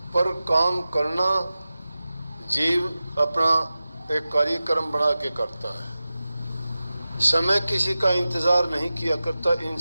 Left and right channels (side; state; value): both; inverted; correlation -0.95